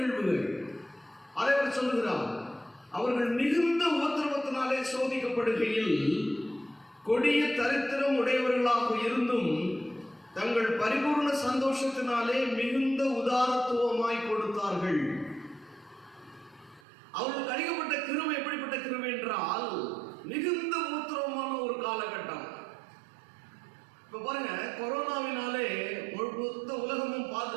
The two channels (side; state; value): left; drops out; at 16.8 s